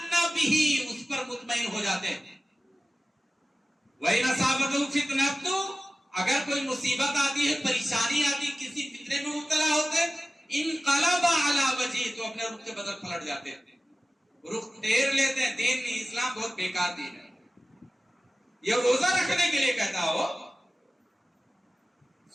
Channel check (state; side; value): normal; both; correlation 0.95